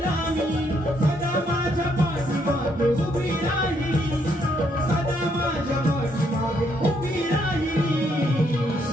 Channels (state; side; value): normal; both; correlation 0.73